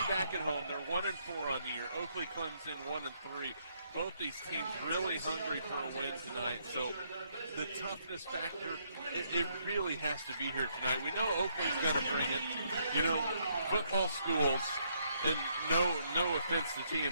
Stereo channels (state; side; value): inverted; both; correlation -0.72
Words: back at home. They're 1-4 on the year. Oakley, Clemson 1-3. Both these teams really hungry for a win tonight. So the toughness factor, it really has to be here tonight. We know Oakley's got to bring it. You know, football schools, and no offense to